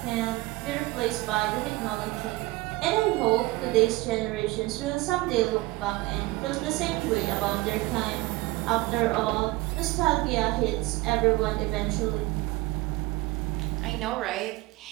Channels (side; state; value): left; quieter; 20.6 dB